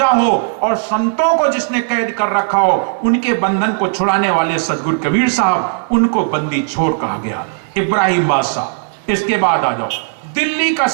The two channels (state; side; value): silent; left; 65 dB below the other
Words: हो और संतों को जिसने कैद कर रखा हो, उनके बंधन को छुड़ाने वाले सदगुरु कबीर साहब, उनको बंदी छोड़ कहा गया, इब्राहिम बादशाह। इसके बाद आ जाओ दिल्ली का